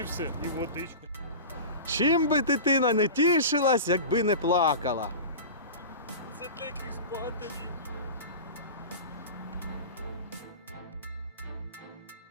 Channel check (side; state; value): both; inverted; correlation -0.31